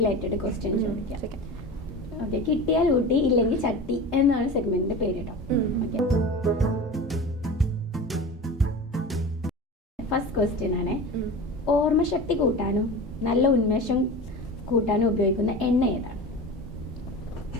ക്വസ്റ്റ്യൻ ചോദിക്കാം. ഓക്കെ, കിട്ടിയാൽ ഊട്ടി ഇല്ലെങ്കിൽ ചട്ടി എന്നാണ് സെഗ്മെന്റിന്റെ പേര് കേട്ടോ. ഓക്കെ, ഫസ്റ്റ് ക്വസ്റ്റ്യൻ ആണ്. ഓർമ്മശക്തി കൂട്ടാനും നല്ല ഉന്മേഷം കൂട്ടാനും ഉപയോഗിക്കുന്ന എണ്ണ ഏതാണ്?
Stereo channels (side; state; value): both; normal; correlation 0.32